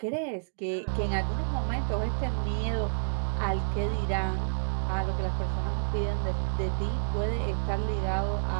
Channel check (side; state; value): left; silent; digital silence